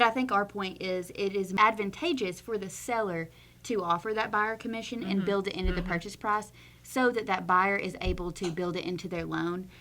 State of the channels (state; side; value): identical; both; correlation 1.00